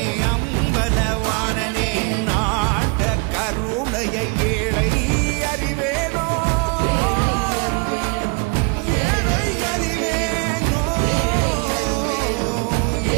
அம்பலவானனே, நாட கருணையை ஏழை அறிவேனோ, ஏழை அறிவேனோ,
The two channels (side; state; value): left; quieter; 31.9 dB